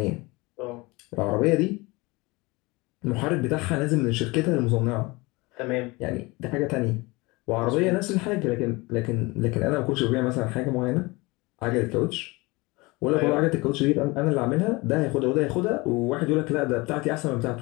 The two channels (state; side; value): quieter; right; 23.9 dB